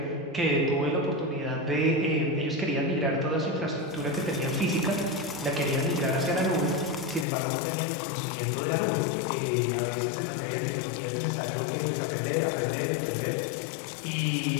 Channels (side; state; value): right; drops out; at 7.2 s